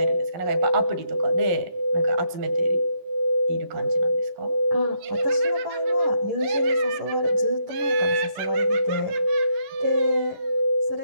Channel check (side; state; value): left; late; 11 ms